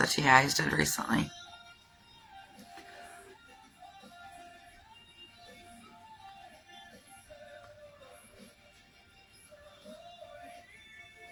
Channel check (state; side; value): identical; both; correlation 1.00